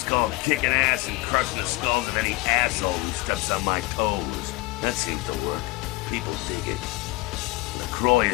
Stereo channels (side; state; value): right; quieter; 21.2 dB